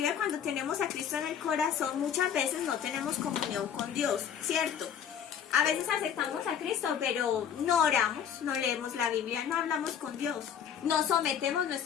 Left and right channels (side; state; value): right; quieter; 8.5 dB